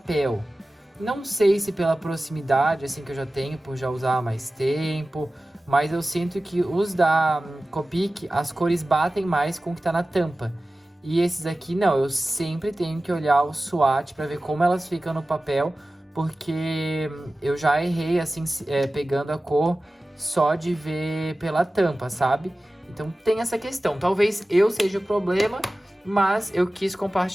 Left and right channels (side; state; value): both; normal; correlation 0.96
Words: Não sei se pela proximidade assim que eu já tenho, por já usar há mais tempo, mas eu sinto que os da Copic, as cores batem mais com o que está na tampa. E esses aqui não, eu sempre tenho que olhar o swatch para ver como elas ficam no papel, porque eu já errei assim, pegando a cor só de ver pela tampa, sabe? Então tem essa questão, talvez eu seja o problema, mas eu quis